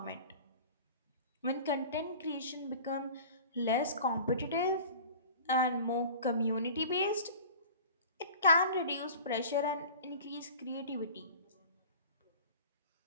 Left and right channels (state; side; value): inverted; both; correlation -0.41